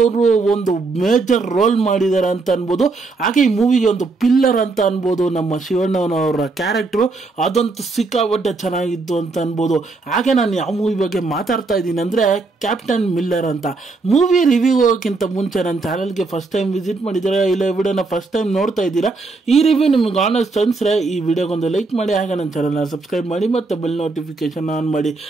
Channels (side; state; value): left; quieter; 3.8 dB